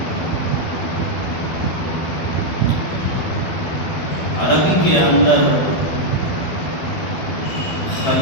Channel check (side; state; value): right; late; 12 ms